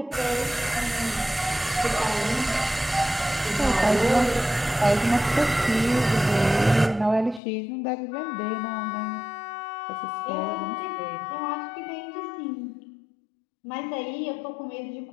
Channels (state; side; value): drops out; right; at 7.4 s